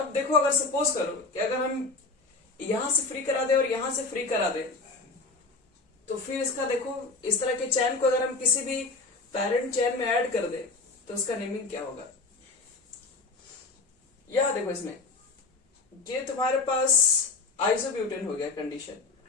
देखो अगर सपोज करो कि अगर हम यहां से फ्री करा दे और यहां से फ्री करा दे, तो फिर इसका देखो इस तरह के चैन को अगर हम किसी भी पेरेंट चैन में ऐड कर दे तो उसका नेमिंग क्या होगा। यह देखो इसमें ये तुम्हारे पास आइसोब्यूटेन हो गया कंडीशन।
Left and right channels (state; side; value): quieter; right; 3.7 dB